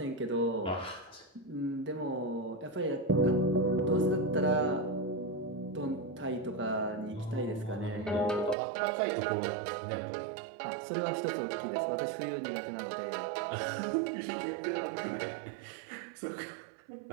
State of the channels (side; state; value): left; drops out; at 8.6 s